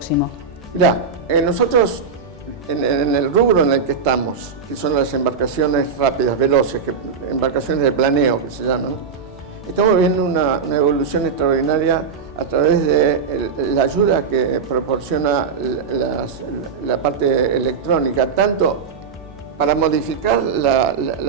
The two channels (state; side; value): quieter; left; 5.7 dB